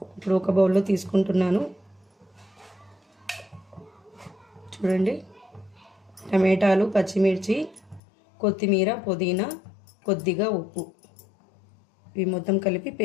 ఇప్పుడు ఒక బౌల్లో తీసుకుంటున్నాను. చూడండి, టమాటాలు, పచ్చిమిర్చి, కొత్తిమీర, పుదీనా, కొద్దిగా ఉప్పు, ఇవి మొత్తం కలిపి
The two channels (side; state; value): right; drops out; at 8.0 s